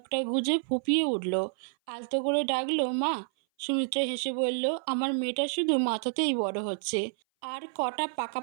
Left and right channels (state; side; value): silent; left; 57 dB below the other